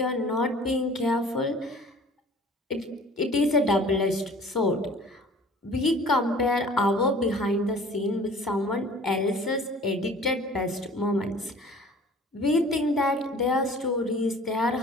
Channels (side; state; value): both; normal; correlation 0.47